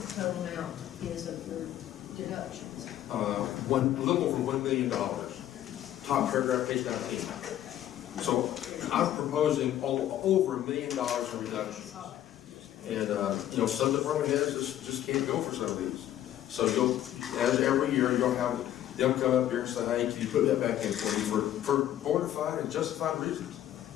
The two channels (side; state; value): right; quieter; 12.3 dB